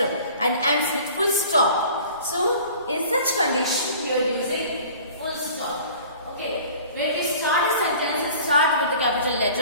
and ends with full stop. So, in such condition, you are using full stop. Okay, when we start a sentence, start with the capital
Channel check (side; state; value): both; inverted; correlation -0.45